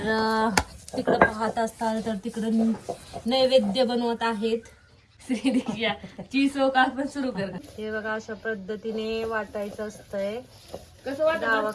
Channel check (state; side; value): identical; both; correlation 1.00